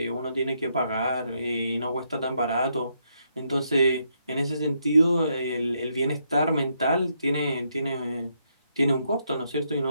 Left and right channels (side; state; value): both; inverted; correlation -0.77